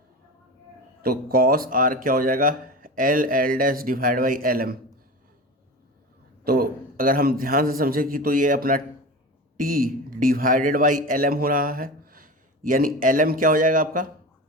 तो कॉस आर क्या हो जाएगा, L dash divide by L M. तो अगर हम ध्यान से समझें कि तो ये अपना T divided by L M हो रहा है, यानी एल एम क्या हो जाएगा आपका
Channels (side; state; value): both; normal; correlation 0.29